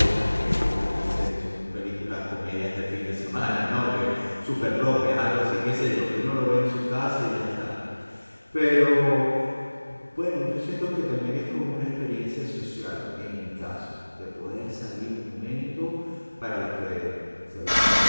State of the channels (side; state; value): both; inverted; correlation -1.00